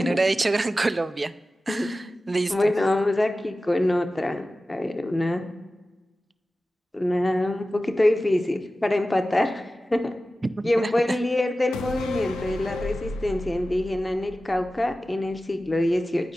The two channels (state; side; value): normal; both; correlation 0.95